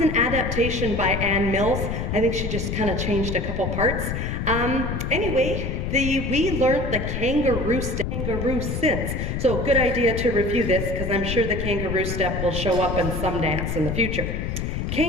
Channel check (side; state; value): left; noise; rumble, 3 dB below the sound